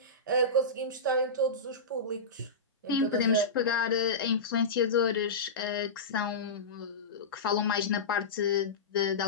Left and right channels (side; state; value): right; quieter; 3.2 dB